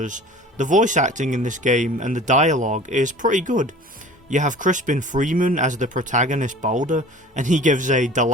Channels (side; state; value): both; normal; correlation 0.42